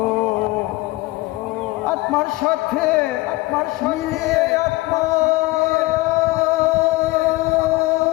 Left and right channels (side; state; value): right; quieter; 20.7 dB